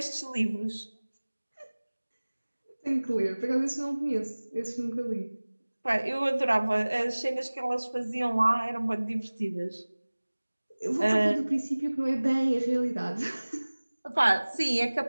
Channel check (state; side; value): inverted; both; correlation -1.00